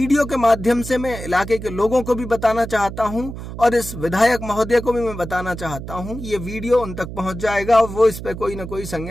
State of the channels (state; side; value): noise; right; hum, 10 dB below the sound